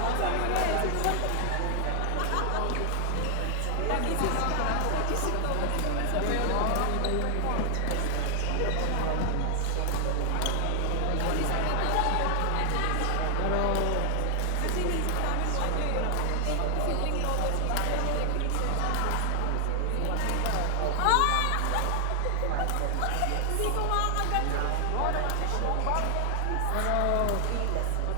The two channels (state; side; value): different; both; correlation 0.00